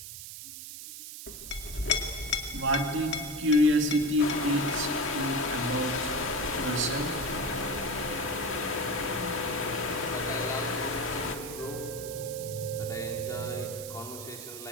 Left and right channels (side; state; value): right; noise; hiss, 10 dB below the sound